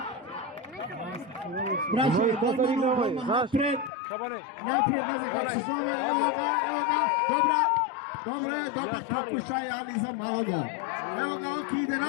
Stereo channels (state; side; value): drops out; right; at 3.9 s